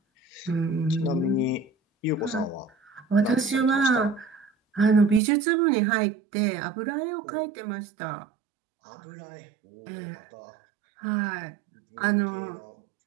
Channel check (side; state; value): left; drops out; at 5.2 s